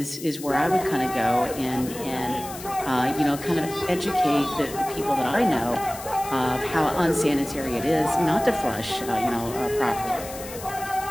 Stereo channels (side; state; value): left; noise; hiss, 13 dB below the sound